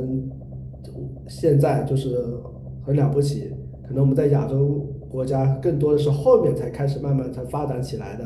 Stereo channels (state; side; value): identical; both; correlation 1.00